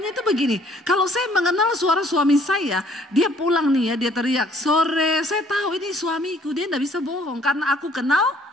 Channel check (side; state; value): both; normal; correlation 0.60